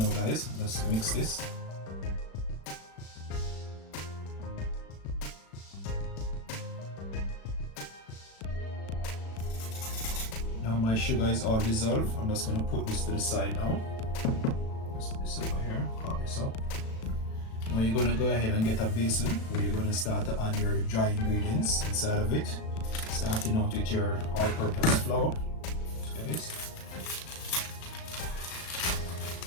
guys. Let's mix this. Now my sugar is all dissolved. I'm just going to put this to the side now. Let's put this over here, cut this up. Now you're going to go ahead and get a basin where you're going to start to add your dry ingredients inside of it. Starting out with your all-purpose flour, guys.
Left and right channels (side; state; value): right; late; 36 ms